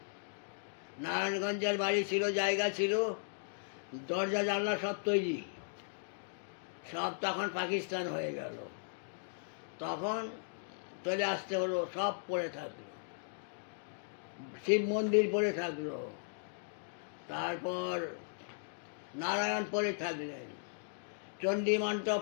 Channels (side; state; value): right; silent; digital silence